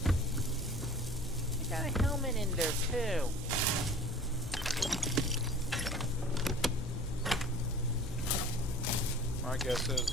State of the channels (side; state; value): both; normal; correlation 0.44